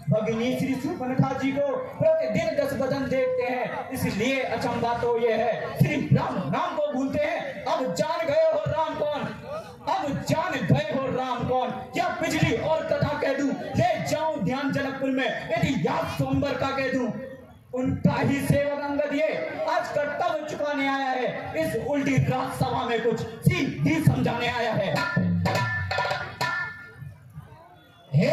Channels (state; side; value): identical; both; correlation 1.00